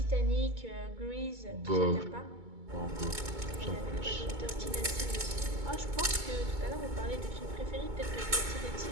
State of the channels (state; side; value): late; left; 2.2 ms